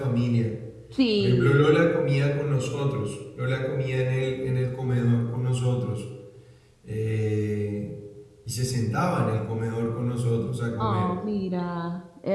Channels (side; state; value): both; identical; correlation 1.00